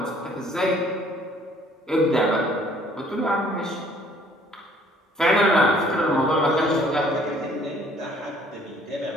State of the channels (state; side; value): normal; both; correlation 0.59